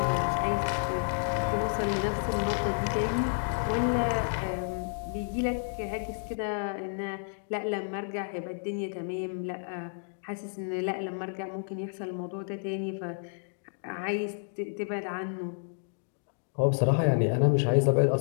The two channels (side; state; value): right; silent; digital silence